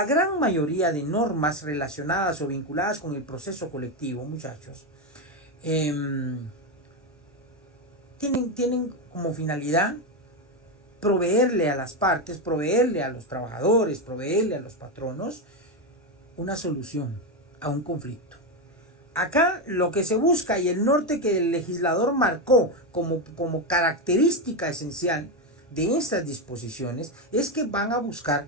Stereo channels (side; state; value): both; normal; correlation 0.10